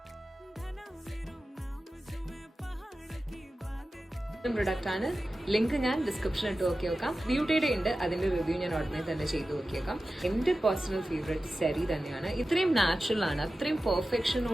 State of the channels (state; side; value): normal; both; correlation 0.94